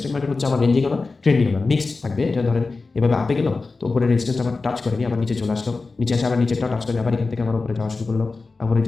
মার্কেট হচ্ছে আমার রেঞ্জিং আমার ট্রেন্ডিং আমার মিক্সড থাকবে। এটা ধরেন এভাবে আপে গেল, তো উপরে রেজিস্ট্যান্স আমার টাচ করেনি, আবার নিচে চলে আসলো, নিচে এসে আবার নিচেরটা টাচ করে আবার এখান থেকে আমার উপরে যাওয়া শুরু করলো। আবার এই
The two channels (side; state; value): right; quieter; 3.9 dB